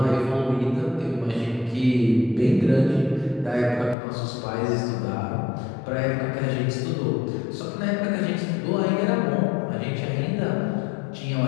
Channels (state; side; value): drops out; right; at 4.0 s